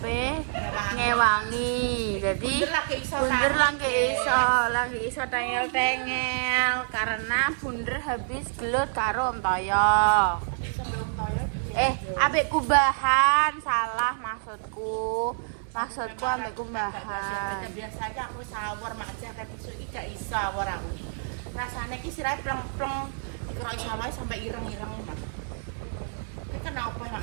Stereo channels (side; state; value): left; silent; digital silence